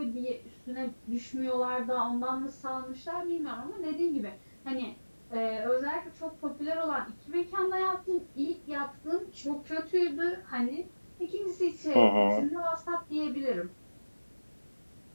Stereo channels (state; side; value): inverted; both; correlation -1.00